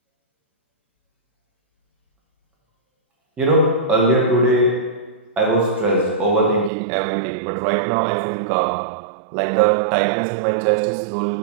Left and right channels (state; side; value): drops out; left; at 6.7 s